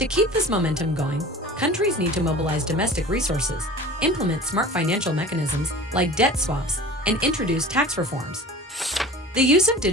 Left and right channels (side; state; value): both; normal; correlation 0.39